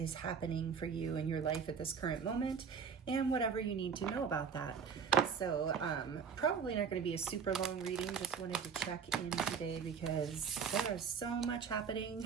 happening for you in your life at this current moment, and whatever you need to know about that. So probably not going to be a super long reading, just wanted to check in today because there is so much happening.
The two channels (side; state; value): left; quieter; 6.5 dB